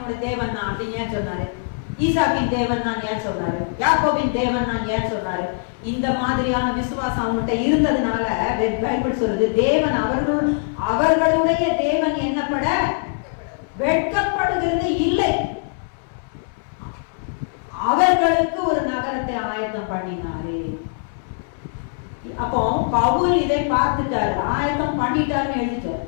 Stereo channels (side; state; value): right; silent; 64 dB below the other